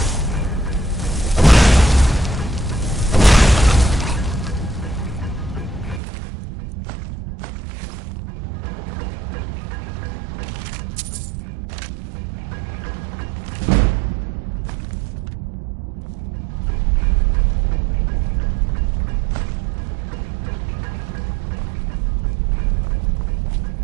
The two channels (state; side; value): drops out; left; at 6.0 s